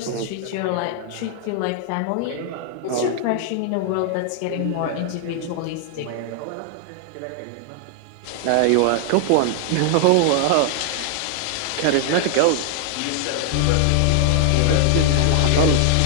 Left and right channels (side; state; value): both; different; correlation -0.01